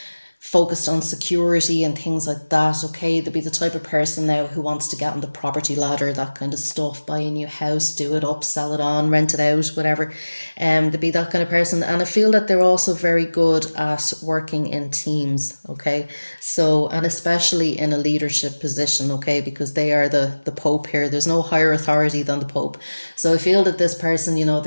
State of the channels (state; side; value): inverted; both; correlation -1.00